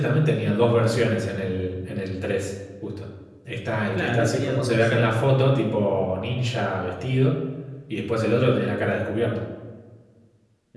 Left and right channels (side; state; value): both; identical; correlation 1.00